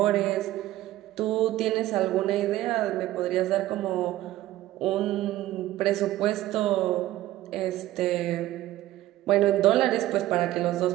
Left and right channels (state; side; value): quieter; left; 15.2 dB